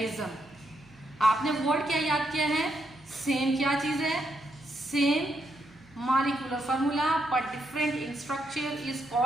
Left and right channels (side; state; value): right; noise; hum, 26 dB below the sound